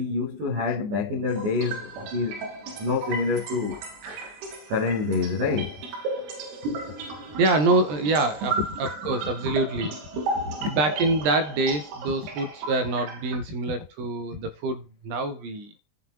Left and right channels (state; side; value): late; left; 20 ms